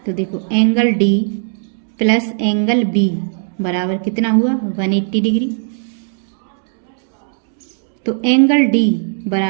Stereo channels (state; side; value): silent; left; digital silence